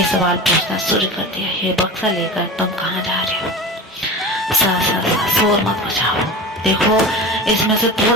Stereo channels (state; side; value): normal; both; correlation 0.31